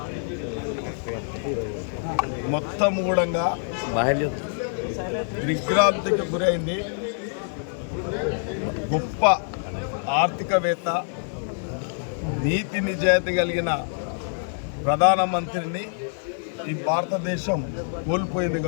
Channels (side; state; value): right; silent; digital silence